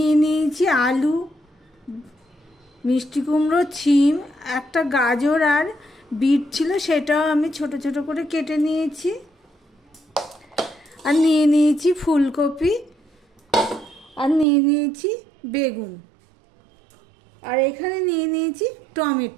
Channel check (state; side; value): drops out; left; at 14.5 s